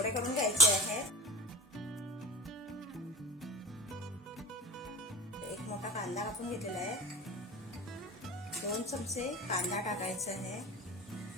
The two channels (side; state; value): both; normal; correlation 0.32